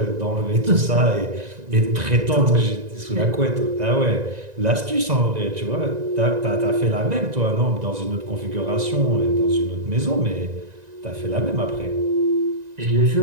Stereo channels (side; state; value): left; late; 1.9 ms